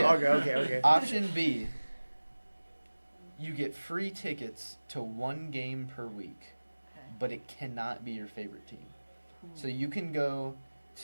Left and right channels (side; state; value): both; inverted; correlation -1.00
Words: Okay. Option B, you get free tickets to 1 game per week, Okay. but it cannot be your favorite team. So you can go